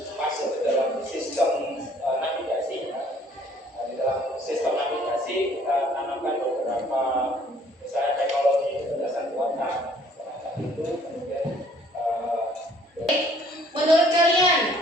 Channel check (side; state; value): both; normal; correlation 0.59